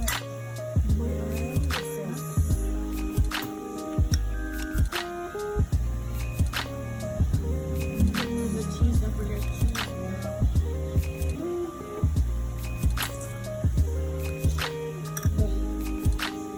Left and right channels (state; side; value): identical; both; correlation 1.00